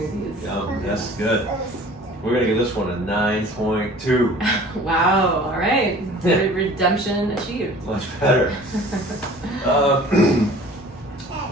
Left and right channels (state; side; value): normal; both; correlation 0.47